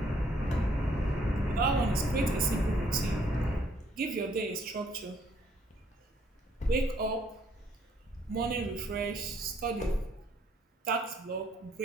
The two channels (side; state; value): both; normal; correlation 0.67